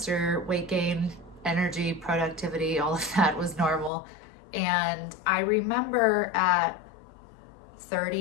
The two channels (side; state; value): right; drops out; at 3.9 s